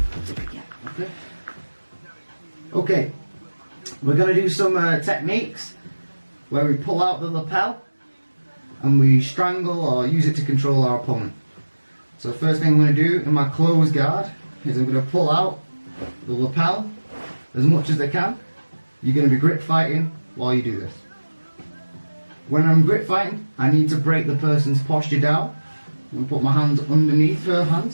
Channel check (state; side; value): inverted; both; correlation -1.00